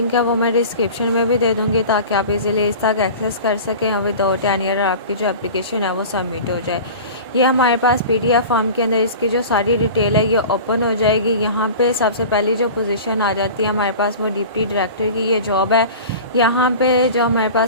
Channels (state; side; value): inverted; both; correlation -0.36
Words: है वो मैं डिस्क्रिप्शन में भी दे दूँगी ताकि आप इजीली इस तक एक्सेस कर सकें और विदाउट एनी एरर आपकी जो एप्लीकेशन है वो सबमिट हो जाए। ये हमारे पास PDF फॉर्म के अंदर इसकी जो सारी डिटेल है ये ओपन हो जाएगी। यहाँ पे सबसे पहली जो पोजीशन आ जाती है हमारे पास वो डिप्टी डायरेक्टर की ये जॉब है। यहाँ पे जो हमारे